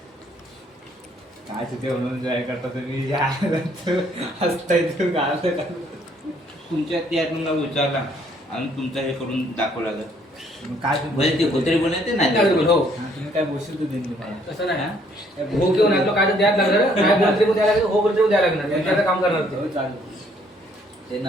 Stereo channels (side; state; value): both; normal; correlation 0.65